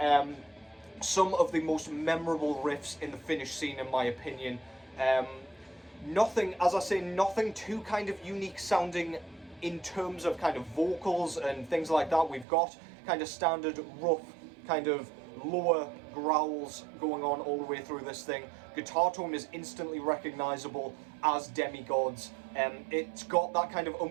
Some of the most memorable riffs in the Finnish scene, in my opinion. Nothing, as I say, nothing too kind of unique sounding in terms of kind of vocals and things like that. We've got kind of standard rough kind of lower growls going on all the way through this thing. Guitar tone is instantly recognizable as Demigod's. It's got that kind of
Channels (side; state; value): left; drops out; at 12.5 s